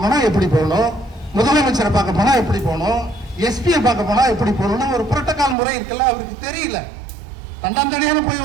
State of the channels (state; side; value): drops out; left; at 5.6 s